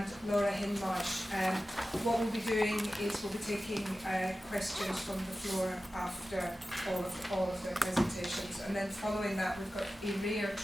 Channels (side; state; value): both; normal; correlation 0.95